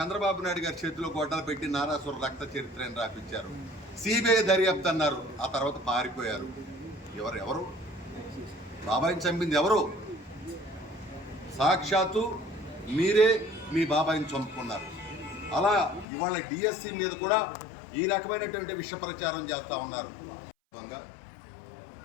నాయుడు గారి చేతిలో గొడ్డలు పెట్టి నారాసుర రక్త చరిత్రని రాపించారు. సిబిఐ దర్యాప్తు అన్నారు, ఆ తర్వాత పారిపోయారు. ఎవరు బాబాయిని చంపింది ఎవరు? సాక్షాత్తు మీరే మీ బాబాయిని చంపుకున్నారు. అలా ఇవాళ డిఎస్సి మీద కూడా ఈ రకమైనటువంటి విష ప్రచారం చేస్తూ ఉన్నారు.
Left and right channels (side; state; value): right; drops out; at 16.1 s